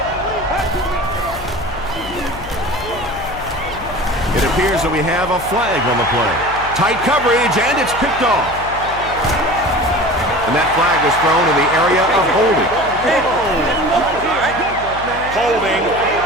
It appears that we have a flag on the play. Tight coverage, and it's picked off. And that flag was thrown in the area of holding. Holding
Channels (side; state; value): left; noise; hum, 14 dB below the sound